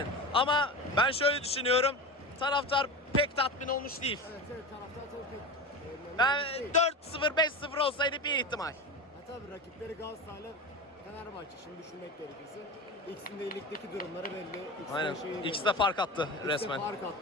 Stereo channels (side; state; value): both; normal; correlation 0.26